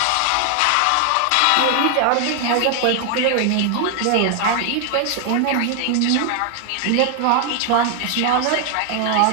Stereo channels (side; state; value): both; different; correlation 0.00